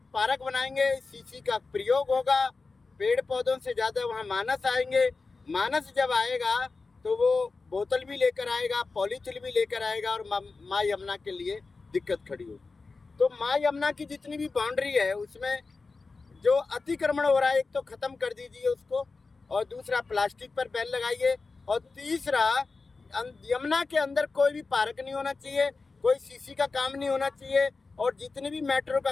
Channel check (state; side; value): quieter; right; 4.0 dB